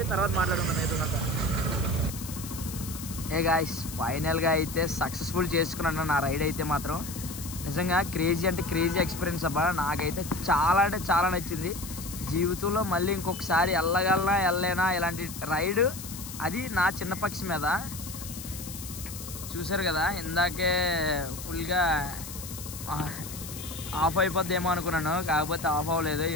తర్వాత మాట్లాడుకుందాం మిగతాదంతా. గాయ్స్ ఫైనల్గా అయితే సక్సెస్ఫుల్ చేసుకున్నాను నా రైడ్ అయితే మాత్రం. నిజంగా క్రేజీ ఎక్స్పీరియన్స్ అబ్బా. నాకైతే చాలా నచ్చింది. జీవితంలో మళ్ళీ ఇంకొకసారి వెళ్ళలేనా ఇలాంటి రైడ్, అది నా చిన్న పక్షి మీద. చూసారు కదా ఇందాకే ఫుల్గా ఆఫ్ అయిపోద్దేమో అనుకున్నాను, కాకపోతే ఆఫ్ అవ్వలేదు.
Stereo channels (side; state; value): left; noise; hiss, 11 dB below the sound